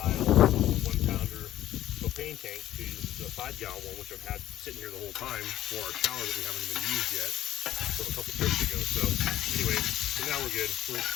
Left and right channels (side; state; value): right; quieter; 13.2 dB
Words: 1-pounder propane tank to the 5-gallon one, which I've had sitting here the whole time for our shower that we haven't even used yet from a couple trips ago. So anyway, so now we're good.